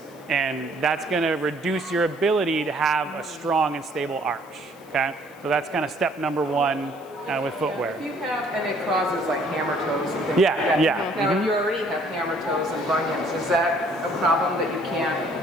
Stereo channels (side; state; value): left; noise; hiss, 27 dB below the sound